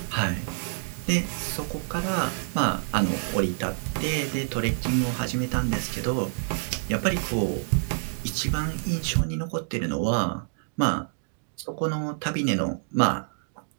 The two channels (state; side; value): silent; left; digital silence